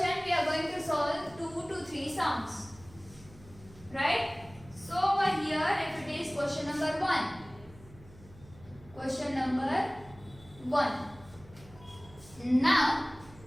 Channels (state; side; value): noise; right; hum, 22 dB below the sound